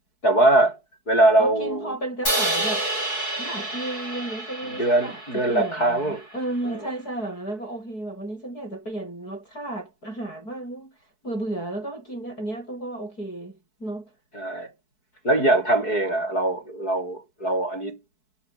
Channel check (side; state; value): right; late; 4.6 ms